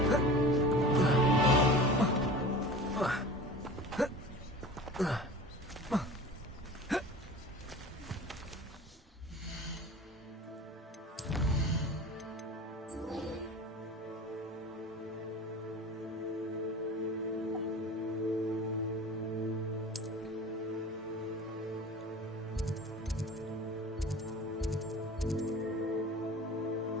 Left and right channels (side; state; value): both; normal; correlation 0.38